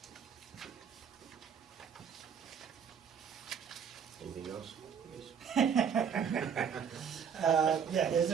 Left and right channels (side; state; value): left; quieter; 7.3 dB